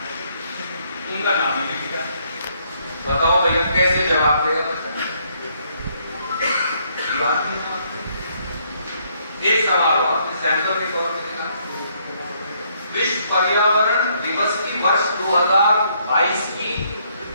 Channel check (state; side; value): inverted; both; correlation -0.70